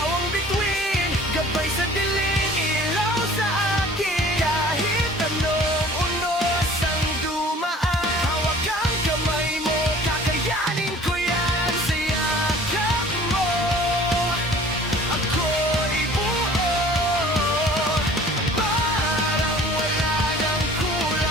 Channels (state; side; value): normal; both; correlation 0.48